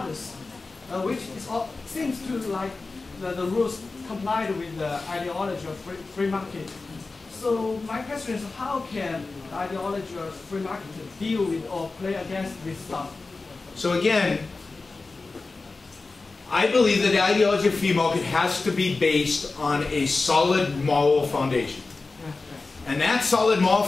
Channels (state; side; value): quieter; right; 3.7 dB